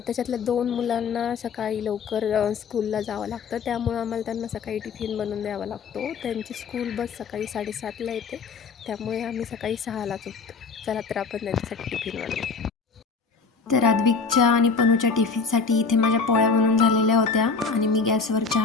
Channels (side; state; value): right; quieter; 5.0 dB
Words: 2 मुलांना सकाळी लवकर स्कूलला जावं लागतं. त्यामुळं आम्हाला त्यांना सकाळी टिफिन बनवून द्यावा लागतो. त्यांची स्कूल बस सकाळी 7:30ला येते. त्यामुळे आम्ही सकाळी 6लाच उठतो. चला तर आपण त्यांच्यासाठी टिफिन बनवू. तर आद्विकच्या आणि पनूच्या टिफिनसाठी इथे माझ्या पोळ्या बनवून झालेल्या होत्या आणि मी गॅसवर